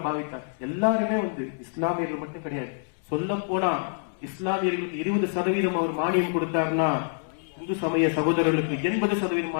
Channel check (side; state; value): right; silent; digital silence